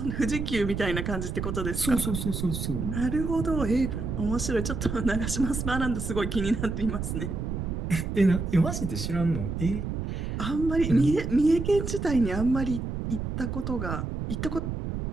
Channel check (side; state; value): right; noise; rumble, 3 dB below the sound